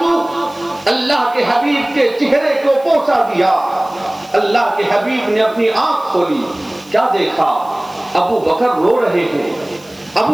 اللہ کے حبیب کے چہرے کو بوسہ دیا، اللہ کے حبیب نے اپنی آنکھ کھولی، کیا دیکھا؟ ابو بکر رو رہے ہیں،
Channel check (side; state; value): right; noise; hiss, 26 dB below the sound